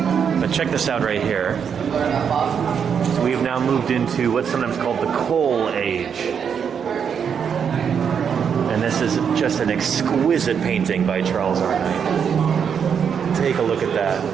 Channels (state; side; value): quieter; left; 7.3 dB